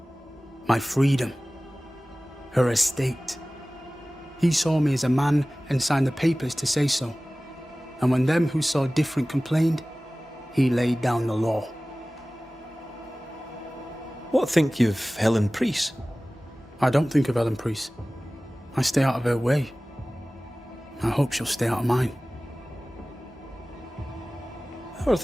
My freedom. Her estate. He saw me as a man and signed the papers to say so. And when them who saw different complained, he laid down the law. What think you of Helen Priest? I don't think of Helen Priest. I stay out of her way. I hope she'll stay out of mine. How are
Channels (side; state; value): both; normal; correlation 0.98